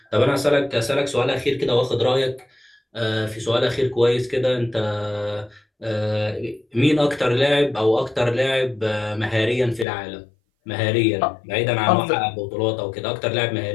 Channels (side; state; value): right; drops out; at 9.9 s